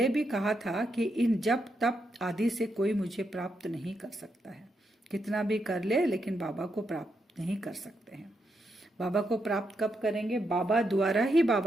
भी कहा था कि इन जप तप आदि से कोई मुझे प्राप्त नहीं कर सकता है। कितना भी कर ले लेकिन बाबा को प्राप्त नहीं कर सकते हैं। बाबा को प्राप्त कब करेंगे? बाबा द्वारा ही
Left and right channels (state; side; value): normal; both; correlation 0.82